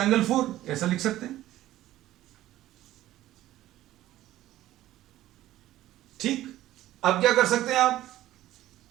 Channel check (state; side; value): quieter; left; 14.5 dB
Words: 4, ऐसा लिख सकते हैं। ठीक, अब क्या कर सकते हैं आप,